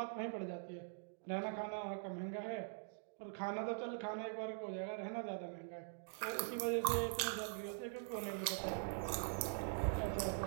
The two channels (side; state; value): left; silent; digital silence